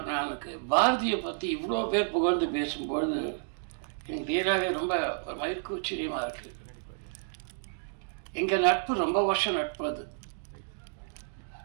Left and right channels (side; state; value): left; silent; digital silence